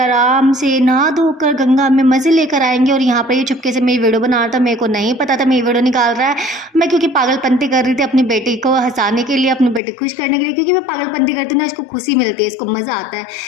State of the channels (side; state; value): right; drops out; at 9.8 s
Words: से नहा धोकर गंगा में मज़े लेकर आएंगे। और यहाँ पर ये चुपके से मेरी वीडियो बना रहा था, मेरे को नहीं पता था मेरी वीडियो निकाल रहा है। मैं क्योंकि पागलपंती कर रही थी अपनी बेटी को हंसाने के लिए, अपनी बेटी खुश करने के लिए, क्योंकि मैं पागलपंती करती हूँ ना, इसको खुशी मिलती है, इसको मज़ा आता है।